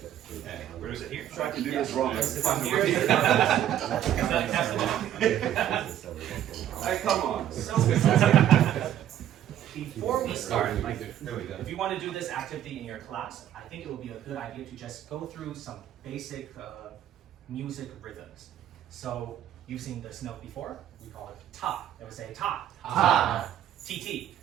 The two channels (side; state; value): left; quieter; 11.1 dB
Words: Where is it here? Try to do this wrong. Hey, come on. So, before we start, like, if you want to do this activity in your class, I think it would be a good idea to just go through some basic music rhythms. So, you've seen this note before. We call it ta. It would say ta. Ta. TT.